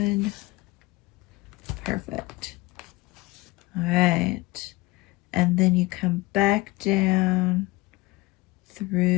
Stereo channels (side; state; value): right; quieter; 21.4 dB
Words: Perfect. All right. And then you come back down